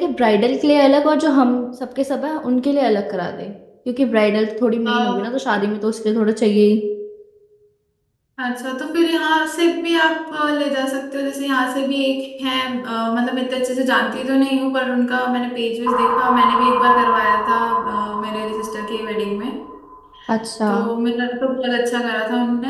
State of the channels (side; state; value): both; identical; correlation 1.00